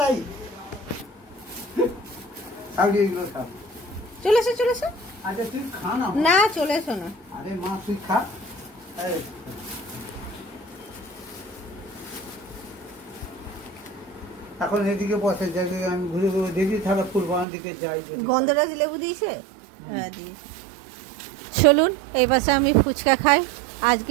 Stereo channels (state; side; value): drops out; left; at 17.4 s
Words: চলেছে চলেছে না, চলেছো না। এখন এদিকে বসে জায়গায় আমি ঘুরে ঘুরে দেখি, তাহলে ফুলবাগান দিকে যাই। গন্ধরাজ লেবু দিয়েছে, হ্যাঁ দিয়েছে। চলুন এই পাশে আমি ফুচকা খাই।